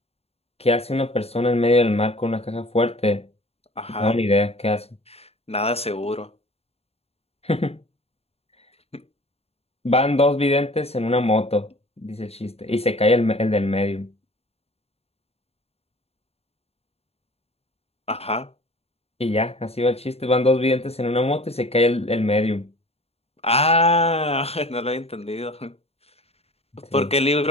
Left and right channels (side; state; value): right; late; 0.29 ms